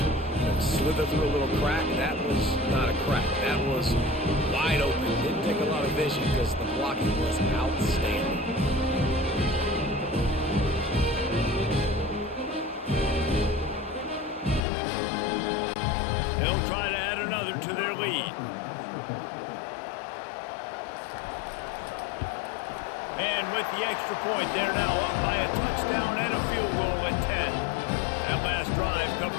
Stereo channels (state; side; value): drops out; right; at 14.6 s